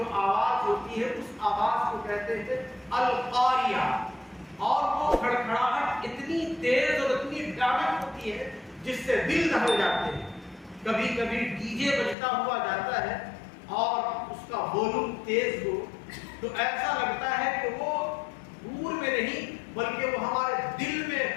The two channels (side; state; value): right; drops out; at 12.2 s